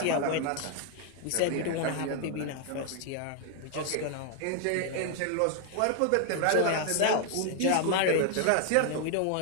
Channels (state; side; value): different; both; correlation 0.00